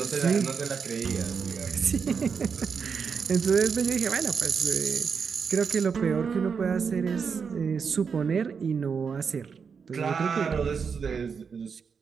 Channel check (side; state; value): left; quieter; 6.0 dB